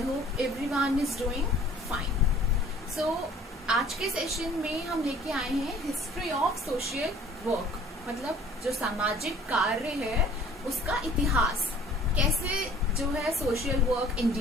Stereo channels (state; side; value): normal; both; correlation 0.52